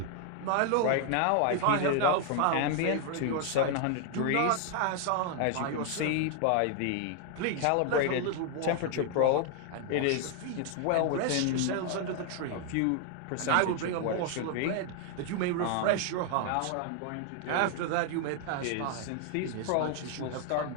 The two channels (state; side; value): different; both; correlation 0.00